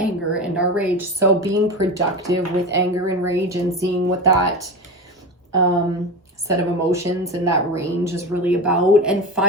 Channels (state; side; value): normal; both; correlation 0.25